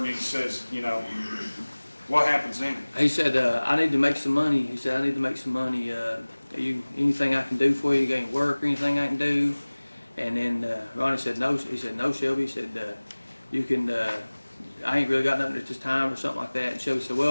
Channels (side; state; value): both; inverted; correlation -1.00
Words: he says, you know, what happens then? He said, I need to make some money. He said, I need to make some money. Anything I can do for you? You got any work or anything I can do? And then Ronnie said, no. He said, no, Shelby. He said, you can, I ain't really got nothing at this time or something like that. And Shelby said,